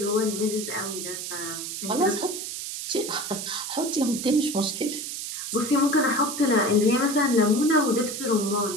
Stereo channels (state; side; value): noise; right; hiss, 6 dB below the sound